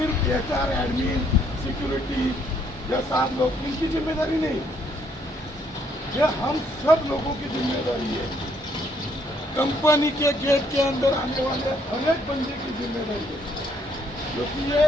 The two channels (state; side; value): normal; both; correlation 0.68